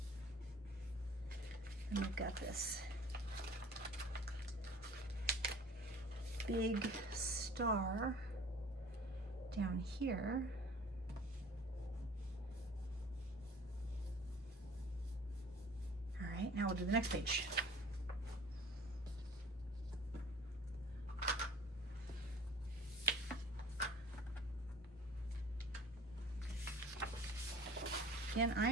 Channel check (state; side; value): normal; both; correlation 0.46